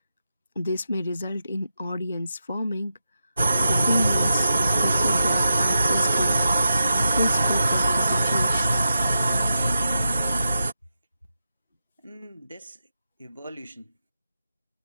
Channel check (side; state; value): both; inverted; correlation -0.88